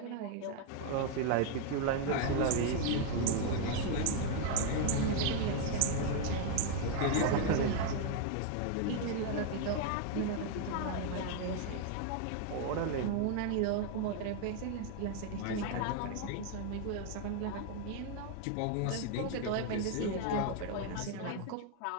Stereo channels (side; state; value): both; different; correlation 0.00